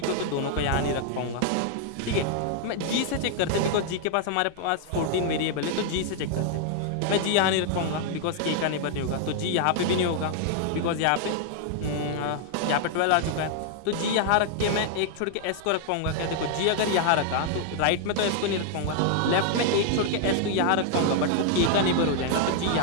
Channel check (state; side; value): different; both; correlation 0.00